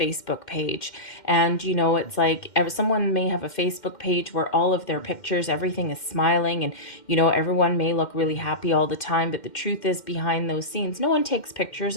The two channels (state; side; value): late; right; 2.1 ms